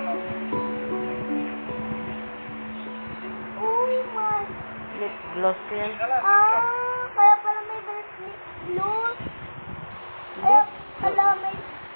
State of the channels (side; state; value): both; inverted; correlation -1.00